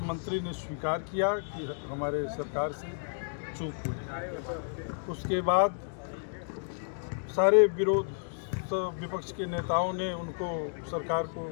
ने स्वीकार किया कि हमारे सरकार से चूक हुई। उसके बाद सारे विपक्ष के नेताओं ने उनको, सरकार को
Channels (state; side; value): silent; right; digital silence